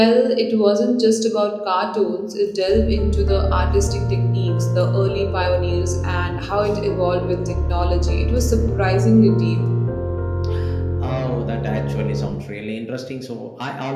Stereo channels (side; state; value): both; identical; correlation 1.00